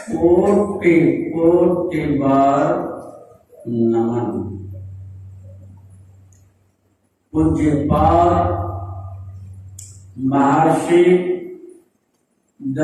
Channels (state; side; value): identical; both; correlation 1.00